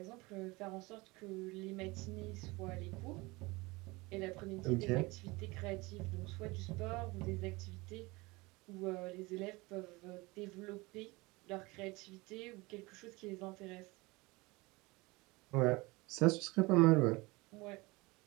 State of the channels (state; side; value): quieter; left; 23.5 dB